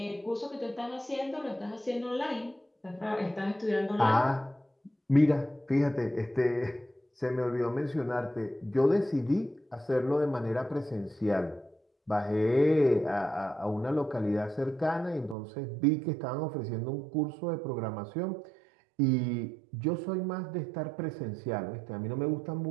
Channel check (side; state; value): left; drops out; at 15.4 s